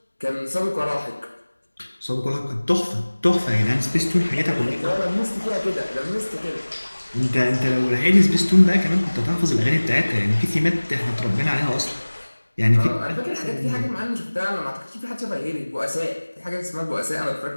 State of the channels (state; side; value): inverted; both; correlation -1.00